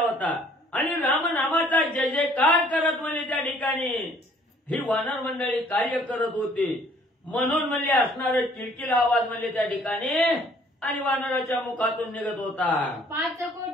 आणि रामनामाचा जय जयकार करत म्हणजे त्या ठिकाणी ही वानर मंडळी कार्य करत होती. म्हणून म्हणजे असणारं किलकिल आवाज म्हणजे त्या ठिकाणी आणि वानराच्या मुखातून निघत होता. 5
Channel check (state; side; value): normal; both; correlation 0.58